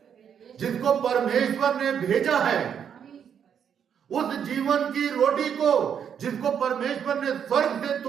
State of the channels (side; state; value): left; quieter; 8.1 dB